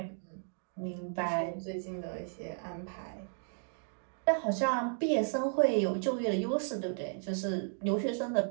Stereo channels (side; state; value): left; silent; 55 dB below the other